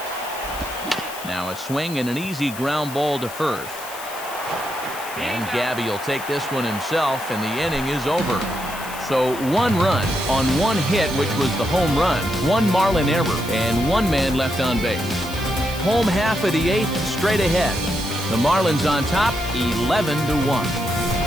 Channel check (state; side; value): noise; left; hiss, 14 dB below the sound